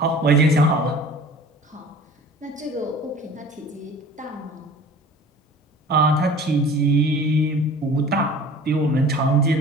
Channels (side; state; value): both; normal; correlation 0.44